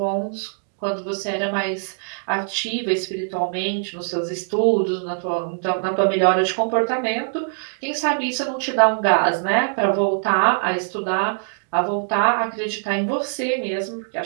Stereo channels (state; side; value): silent; left; digital silence